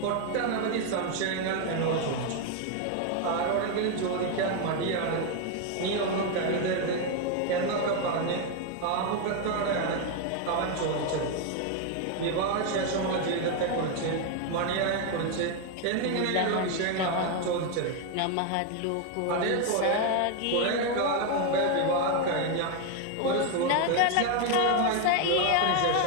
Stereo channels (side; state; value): both; different; correlation 0.01